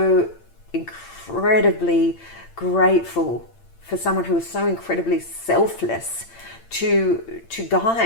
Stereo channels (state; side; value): late; right; 8.8 ms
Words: incredibly grateful for someone who is so incredibly selfless to